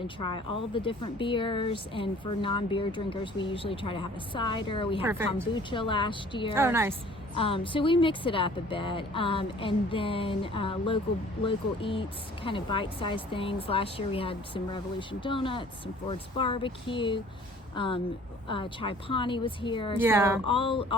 try all the different beers. And for non-beer drinkers, we usually try to have a cider. We had kombucha last year. Oh, nice. So we mix it up a bit, and then local eats, kind of bite-sized things. Last year we had some Revolution Donuts, some Ford's Barbecue, Chai Pani was here. Yeah. So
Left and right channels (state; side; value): normal; both; correlation 0.51